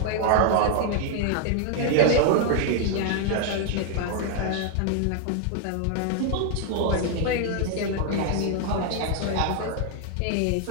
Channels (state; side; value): different; both; correlation 0.00